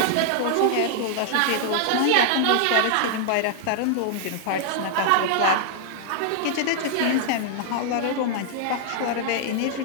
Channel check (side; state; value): both; different; correlation -0.01